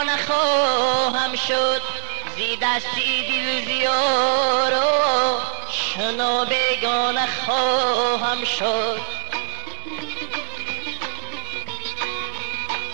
نخواهم شد زی دستی دل زیار و شنا بیگانه خواهم شد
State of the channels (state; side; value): silent; left; 58 dB below the other